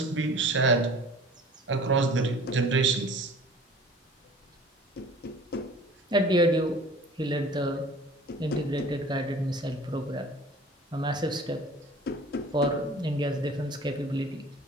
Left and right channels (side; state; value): both; normal; correlation 0.46